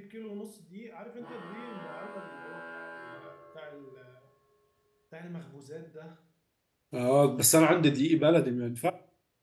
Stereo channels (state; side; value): identical; both; correlation 1.00